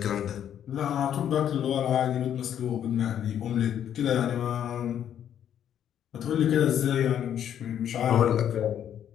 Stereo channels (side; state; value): right; quieter; 9.8 dB